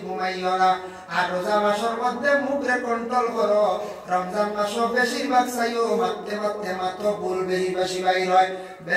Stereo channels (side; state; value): both; identical; correlation 1.00